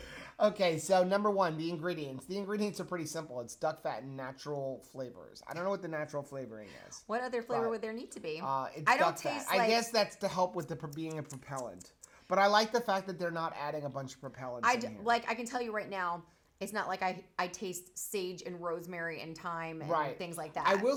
Okay, so number one, the ingredients. The ingredients are pretty simple. It's duck fat and natural flavors. I don't know what the natural flavoring is. What other flavor would there need to be? It's I don't duck fat. taste I guess that's to help with the being a propellant. But I like the fact that they're not adding a bunch of propellants in here. I can tell you right now, it's not like I taste sage and rosemary and thyme and things like that. I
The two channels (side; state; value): both; identical; correlation 1.00